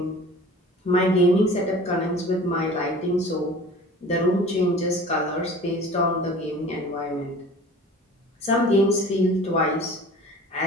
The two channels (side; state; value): both; normal; correlation 0.43